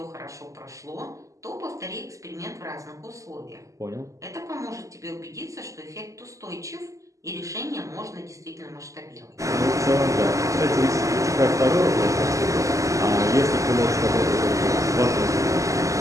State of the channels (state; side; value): late; left; 0.16 ms